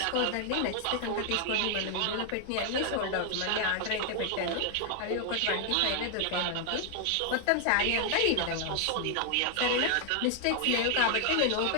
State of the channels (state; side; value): different; both; correlation 0.00